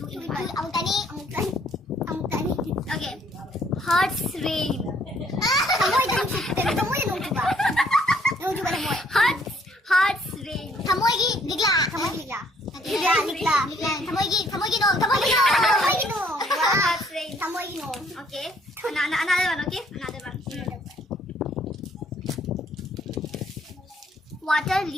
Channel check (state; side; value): normal; both; correlation 0.64